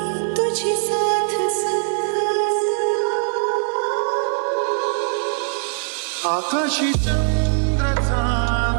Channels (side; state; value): left; silent; digital silence